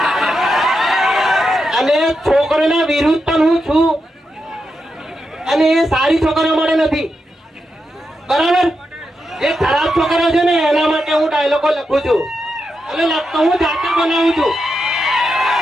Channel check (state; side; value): normal; both; correlation 0.86